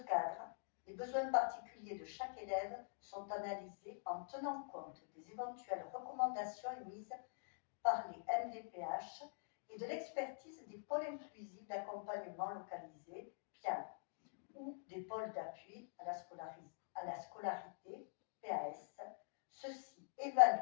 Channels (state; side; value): silent; right; digital silence